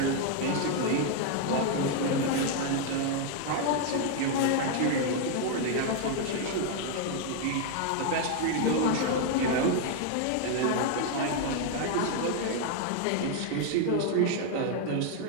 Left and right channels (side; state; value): both; different; correlation 0.00